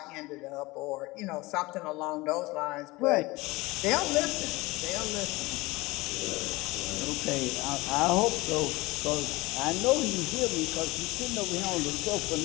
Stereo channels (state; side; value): quieter; right; 21.9 dB